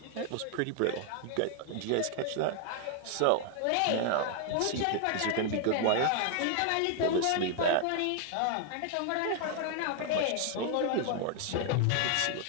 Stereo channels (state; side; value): different; both; correlation 0.00